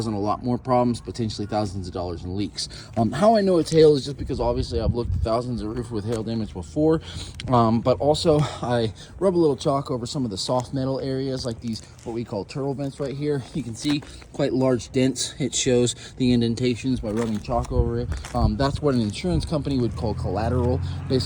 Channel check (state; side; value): identical; both; correlation 1.00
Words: a lot more problems, potentially thousands of dollars in leaks. How I know it's hail is just because obviously I've looked at thousands of roofs with hail damage before, but also I rub a little chalk over some of the soft metal areas like these, what we call turtle vents right here. You can see quite large dents. It shows the indentations by rubbing chalk over it. That's what an insurance company would call collateral,